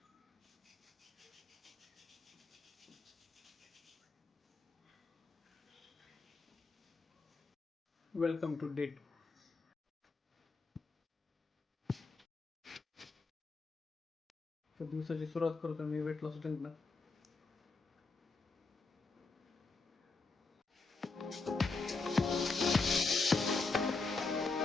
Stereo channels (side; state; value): right; quieter; 3.9 dB